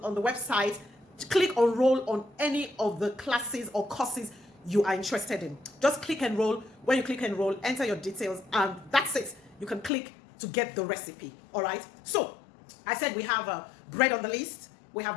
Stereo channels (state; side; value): drops out; right; at 9.9 s